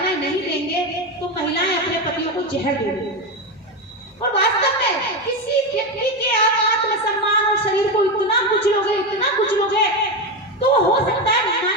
नहीं देंगे तो महिलाएं अपने पतियों को जहर देंगी। और वास्तव में किसी व्यक्ति के आप आत्मसम्मान और शरीर को इतना कुचलोगे तो हो सकता है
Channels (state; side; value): normal; both; correlation 0.14